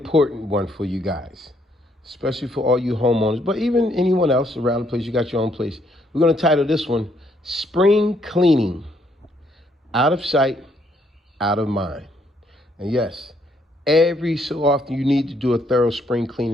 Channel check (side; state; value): both; normal; correlation 0.70